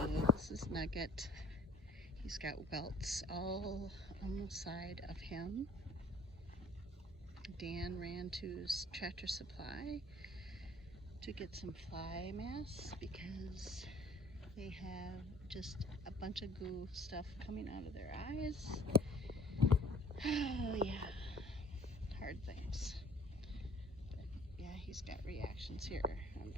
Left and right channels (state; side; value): normal; both; correlation 0.53